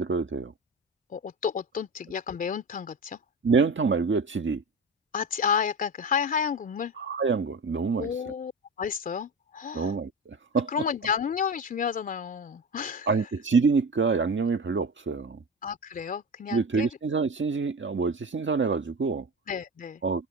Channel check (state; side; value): normal; both; correlation 0.26